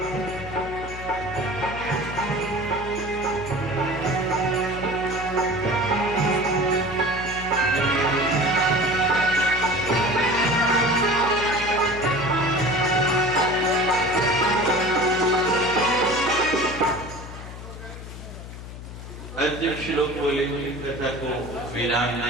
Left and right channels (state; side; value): noise; left; hum, 12 dB below the sound